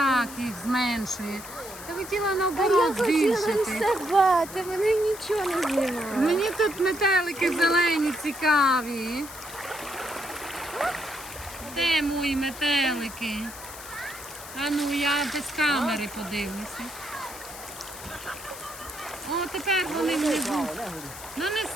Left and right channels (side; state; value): left; noise; hiss, 13 dB below the sound